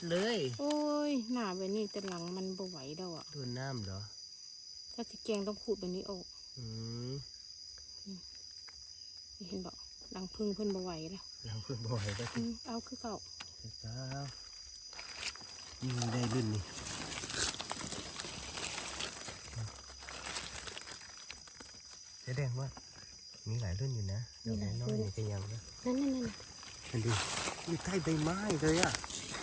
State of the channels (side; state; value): both; identical; correlation 1.00